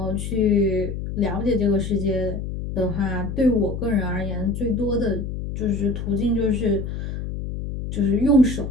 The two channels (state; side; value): noise; left; hum, 5 dB below the sound